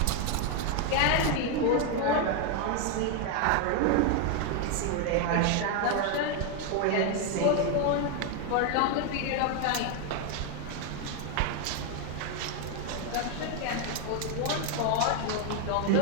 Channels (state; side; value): different; both; correlation 0.01